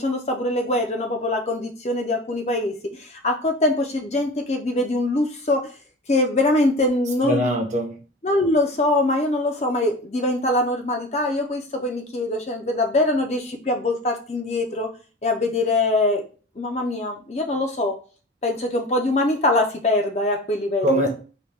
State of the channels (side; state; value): both; normal; correlation 0.34